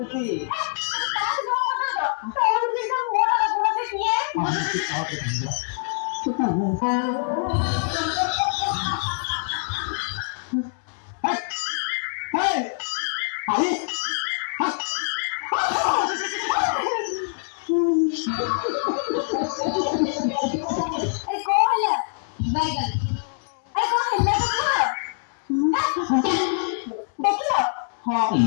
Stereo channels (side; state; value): right; silent; 62 dB below the other